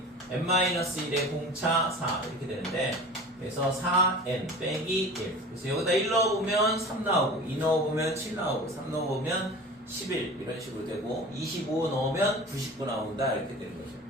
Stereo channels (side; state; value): both; normal; correlation 0.37